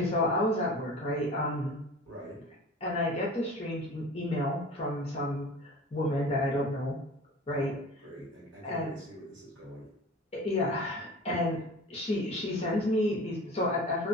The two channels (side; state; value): both; normal; correlation 0.39